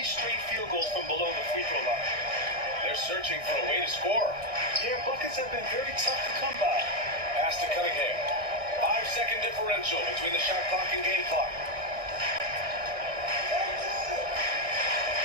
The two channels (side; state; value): left; late; 1.6 ms